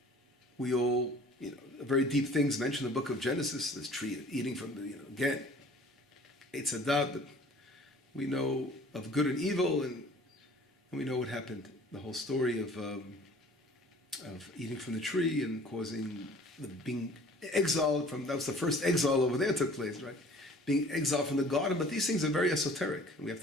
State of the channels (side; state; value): both; normal; correlation 0.50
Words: we all, very deep things mentioned in the book of Genesis, this tree, eating from the, again, it's a doubt that we know of good and evil, and we know what happened. The whole story of eating from the tree and causing being exiled from, that was the first exile over there took place, right? Being exiled from the garden. But these things are very esoteric. We have